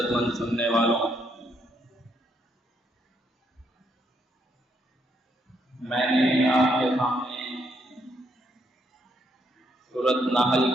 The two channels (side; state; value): both; normal; correlation 0.74